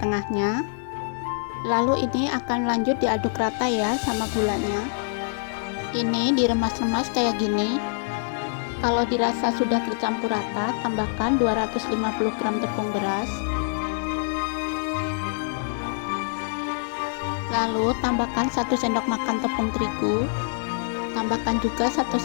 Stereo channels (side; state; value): right; silent; digital silence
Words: tengahnya. Lalu ini akan lanjut diaduk rata ya sama gulanya. Ini diremas-remas kayak gini. Kalau dirasa sudah tercampur rata, tambahkan 250 gram tepung beras. Lalu tambahkan 1 sendok makan tepung terigu. Tambahkan juga 1